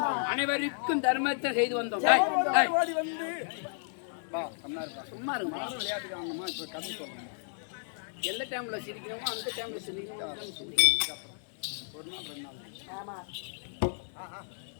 அனைவருக்கும் தர்மத்தை செய்து வந்தோம். சும்மா இருக்கும். எந்த டைம்ல சிரிக்கணுமோ அந்த டைம்ல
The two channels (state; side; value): silent; right; digital silence